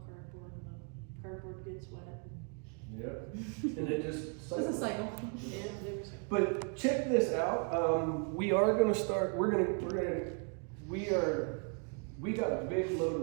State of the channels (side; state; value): left; quieter; 39.3 dB